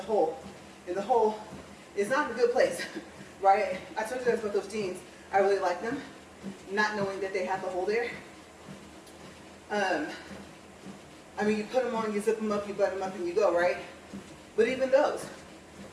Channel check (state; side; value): identical; both; correlation 1.00